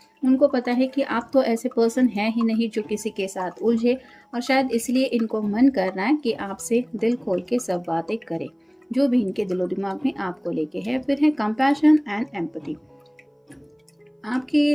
उनको पता है कि आप तो ऐसे पर्सन हैं ही नहीं जो किसी के साथ उलझे, और शायद इसलिए इनको मन कर रहा है कि आपसे दिल खोल के सब बातें करें जो भी इनके दिलो दिमाग में आपको लेके है। फिर है कंपैशन एंड एम्पैथी।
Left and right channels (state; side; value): identical; both; correlation 1.00